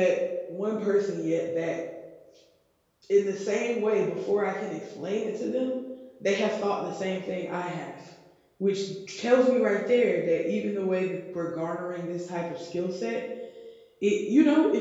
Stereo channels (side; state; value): both; identical; correlation 1.00